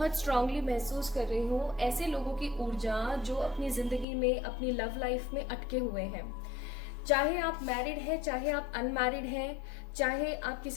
स्ट्रांगली महसूस कर रही हूँ ऐसे लोगों की ऊर्जा जो अपनी जिंदगी में, अपनी लव लाइफ में अटके हुए हैं। चाहे आप मैरिड हैं, चाहे आप अनमैरिड हैं, चाहे आप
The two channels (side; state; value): right; drops out; at 4.0 s